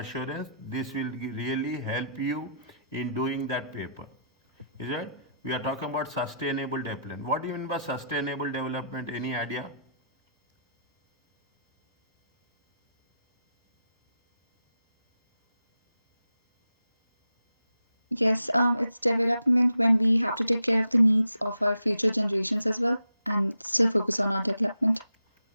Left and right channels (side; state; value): both; inverted; correlation -0.79